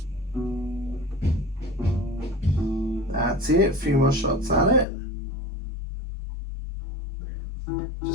That's it. A few more shots at it.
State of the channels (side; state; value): right; drops out; at 4.9 s